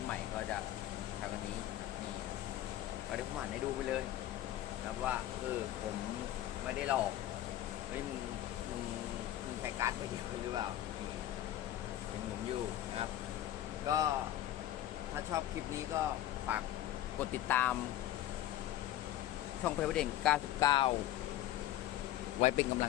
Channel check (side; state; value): right; quieter; 13.3 dB